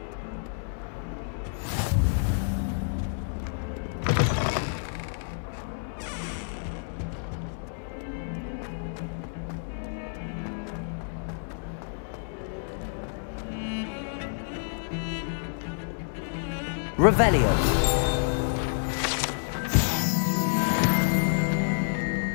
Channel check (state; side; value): silent; right; 59 dB below the other